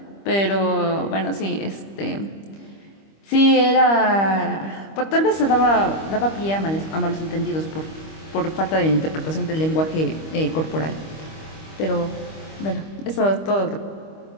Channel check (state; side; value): late; right; 25 ms